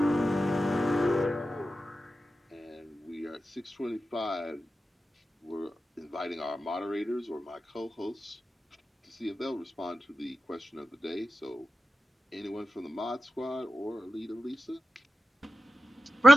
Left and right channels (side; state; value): both; normal; correlation 0.92